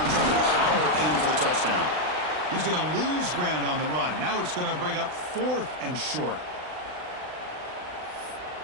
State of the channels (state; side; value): late; left; 39 ms